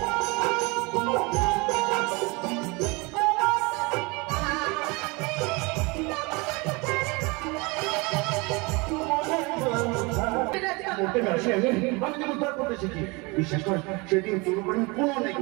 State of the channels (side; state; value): left; quieter; 27.1 dB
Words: বিশেষ করে সেদিন দুর্ঘটনা কোনো নেই